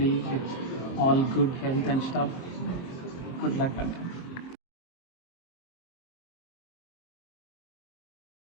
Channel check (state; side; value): late; right; 23 ms